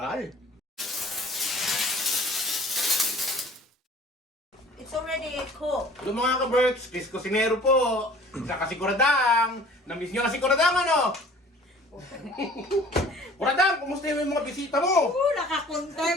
It's already cooked. Hello mga ka-Berks, kis Kusinero po. Saka si Kuradang. Namiss nyo na si Kuradang, ano? Kuradang, kumusta yung mga bisita mo?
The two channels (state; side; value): normal; both; correlation 0.49